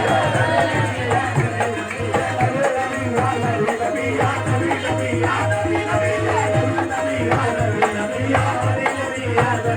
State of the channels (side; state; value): both; identical; correlation 1.00